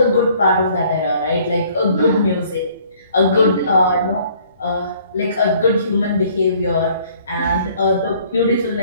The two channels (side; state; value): both; inverted; correlation -0.59